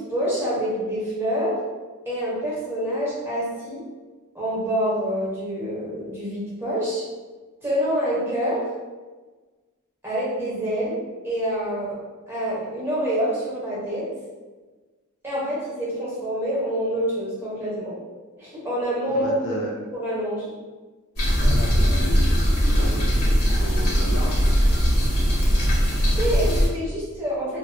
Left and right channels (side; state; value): both; normal; correlation 0.63